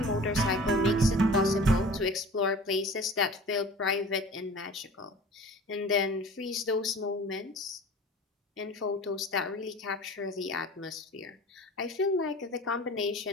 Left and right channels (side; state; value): both; normal; correlation 0.42